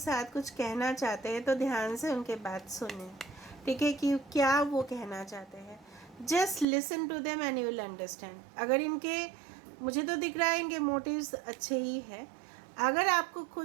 कुछ कहना चाहते हैं तो ध्यान से उनके बात सुने. ठीक है, कि क्या वो कहना चाहते हैं. Just listen to them and you will understand. अगर इनके, मुझे तो दिख रहा है इनके मोटिव्स अच्छे ही है. अगर आपको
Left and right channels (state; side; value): drops out; left; at 6.7 s